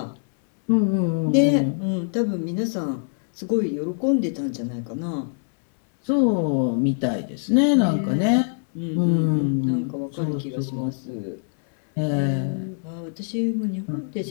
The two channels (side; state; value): right; silent; 63 dB below the other